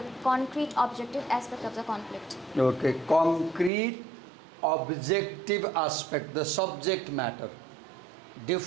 concrete objective aspect of the conflict. Okay, concrete objective aspect, the subject matter.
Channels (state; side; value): drops out; left; at 3.7 s